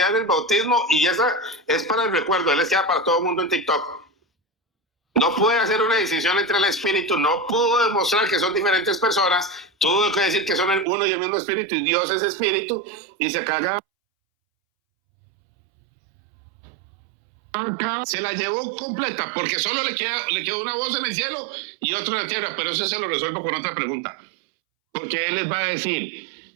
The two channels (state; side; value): drops out; left; at 10.9 s